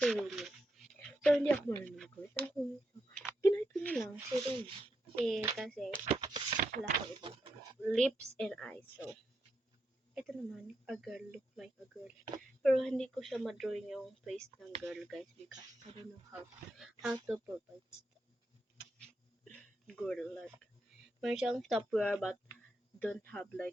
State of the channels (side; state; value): both; normal; correlation 0.83